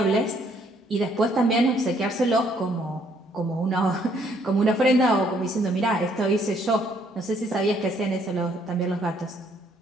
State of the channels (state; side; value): normal; both; correlation 0.66